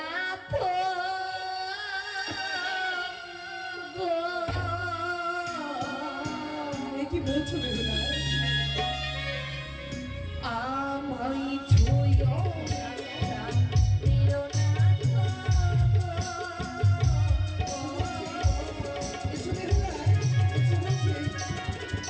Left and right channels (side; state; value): both; identical; correlation 1.00